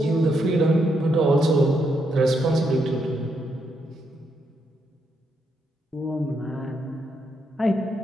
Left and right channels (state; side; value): normal; both; correlation 0.79